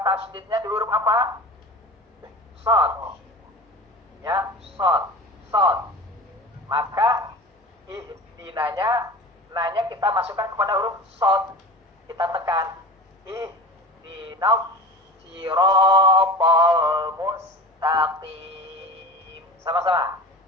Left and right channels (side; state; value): both; normal; correlation 0.34